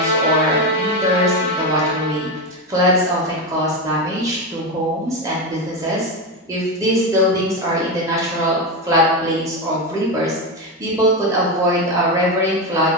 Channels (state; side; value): normal; both; correlation 0.14